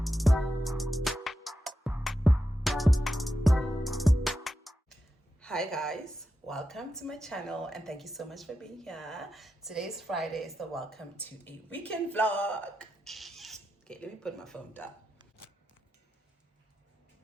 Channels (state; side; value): normal; both; correlation 0.88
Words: Hi guys, welcome to my channel and thank you so much for being here. Today's Friday is the welcome to a weekend vlog. Okay, let me put my phone down.